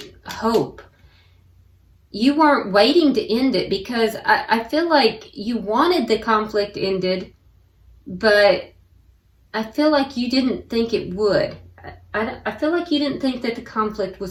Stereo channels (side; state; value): both; identical; correlation 1.00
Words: hope. You weren't waiting to end it, because I feel like you wanted the conflict ended, but I feel like you didn't think it would. I feel like you didn't think that the conflict